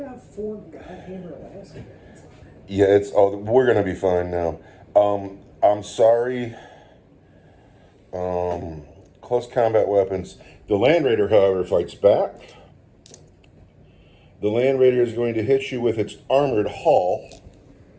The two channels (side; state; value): both; identical; correlation 1.00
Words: 4 goddamn Alaska guys. Yeah, we're gonna be fine now. I'm sorry. Close combat weapons. The Land Raider, however, fights back. The Land Raider is going to hit you with its armored hull.